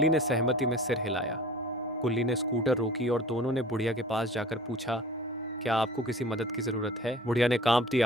ने सहमति में सिर हिलाया। गुल्ली ने स्कूटर रोकी और दोनों ने बुढ़िया के पास जाकर पूछा, क्या आपको किसी मदद की जरूरत है? बुढ़िया ने कांपती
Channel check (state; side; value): normal; both; correlation 0.44